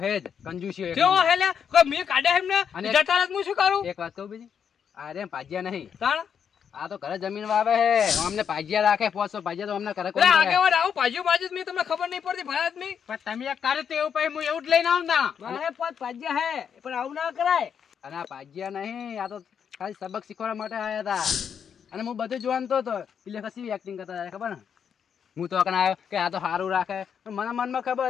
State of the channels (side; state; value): right; quieter; 7.6 dB